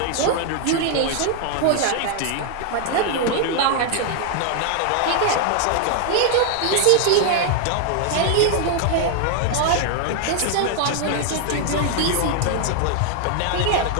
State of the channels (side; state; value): both; different; correlation 0.00